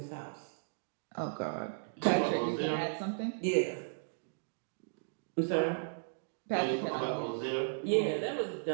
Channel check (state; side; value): silent; left; digital silence